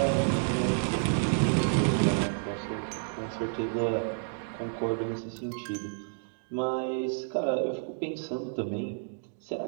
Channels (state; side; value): silent; left; digital silence